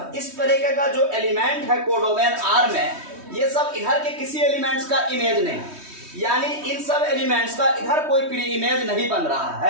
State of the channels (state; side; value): late; left; 3.2 ms